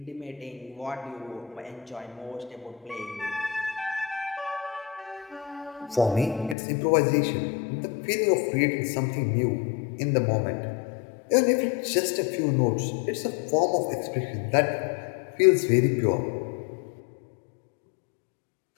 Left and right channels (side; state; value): right; drops out; at 6.6 s